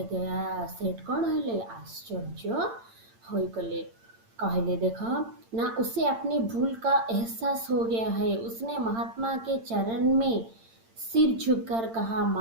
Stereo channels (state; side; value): late; left; 8.8 ms